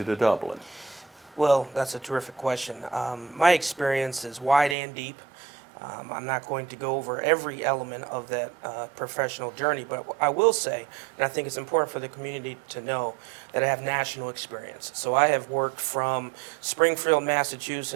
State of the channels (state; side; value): drops out; left; at 4.8 s